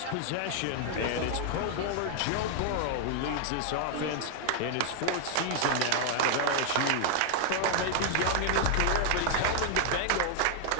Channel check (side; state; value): both; different; correlation 0.00